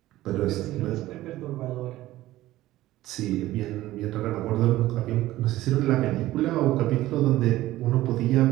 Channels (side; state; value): left; quieter; 15.9 dB